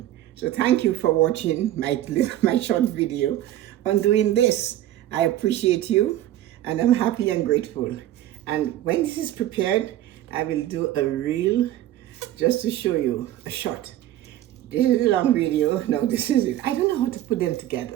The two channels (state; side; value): quieter; left; 13.2 dB